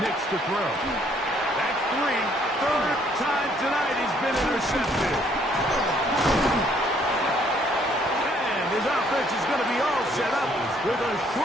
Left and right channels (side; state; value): both; normal; correlation 0.65